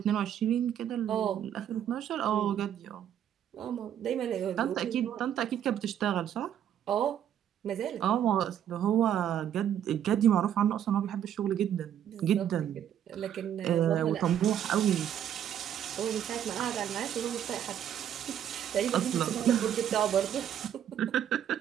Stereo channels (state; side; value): quieter; left; 10.0 dB